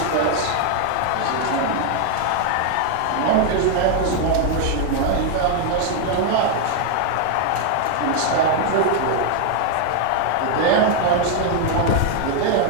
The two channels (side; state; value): both; different; correlation 0.00